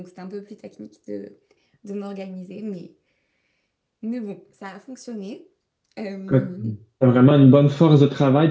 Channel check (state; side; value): identical; both; correlation 1.00